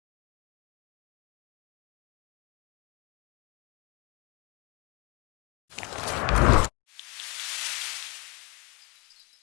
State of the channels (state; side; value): quieter; right; 28.7 dB